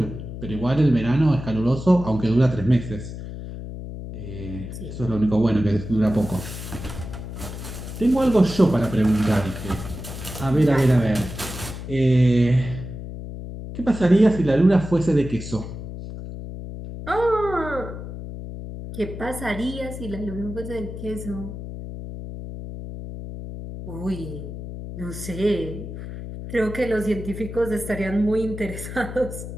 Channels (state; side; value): noise; left; hum, 9 dB below the sound